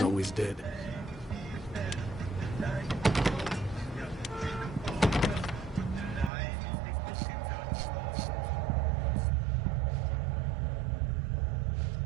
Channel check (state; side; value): drops out; left; at 6.3 s